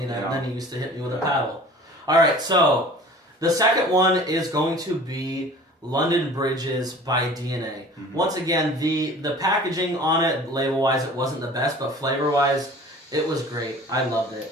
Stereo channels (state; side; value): normal; both; correlation 0.45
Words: that, and then he used to hit me with a paddle. All right, so the second one is going to be London Bridges by DNA. Mm-hmm. Once again, the packaging on it, label wise, it wasn't the best, but flavor wise, it was great. I loved